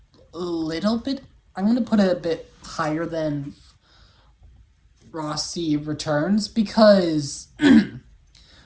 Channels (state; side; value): identical; both; correlation 1.00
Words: little bit. I'm gonna put it a bit higher than Frosty Returns because